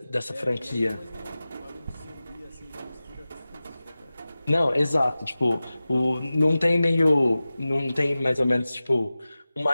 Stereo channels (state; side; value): inverted; both; correlation -0.96